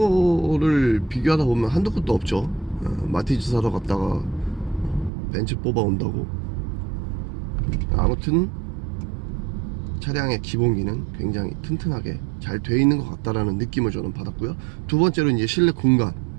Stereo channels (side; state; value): left; drops out; at 5.1 s